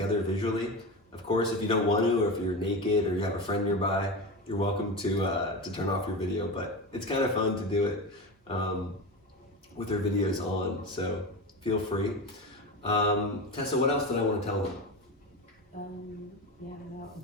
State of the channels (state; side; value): normal; both; correlation 0.23